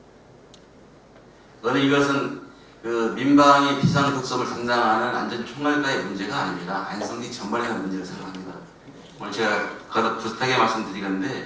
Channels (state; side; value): identical; both; correlation 1.00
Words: 저는 이것은 그 민방위 비상급섭을 담당하는 안전총괄과의 문제가 아닙니다. 안성시 전반의 문제를 생각합니다. 오늘 제가 거듭 부탁하게 말씀드리건데